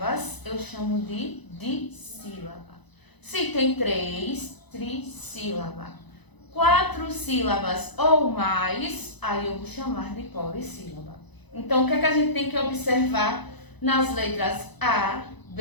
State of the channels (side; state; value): right; late; 1.0 ms